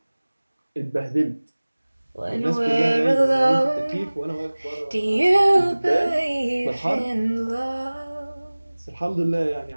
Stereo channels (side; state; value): both; inverted; correlation -1.00